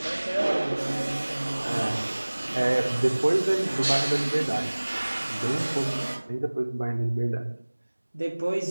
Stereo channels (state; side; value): inverted; both; correlation -1.00